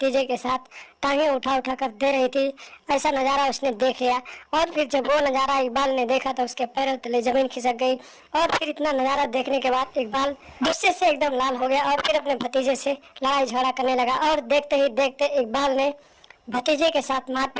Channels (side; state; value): both; identical; correlation 1.00